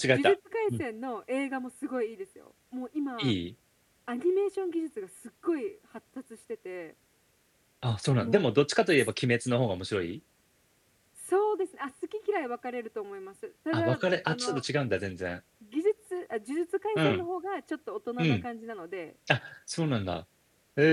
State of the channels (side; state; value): both; identical; correlation 1.00